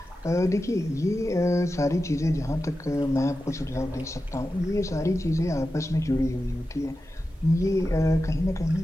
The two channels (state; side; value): normal; both; correlation 0.92